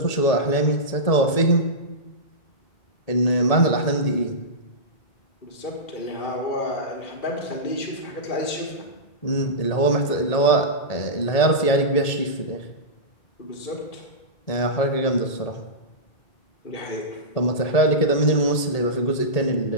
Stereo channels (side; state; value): right; late; 1.8 ms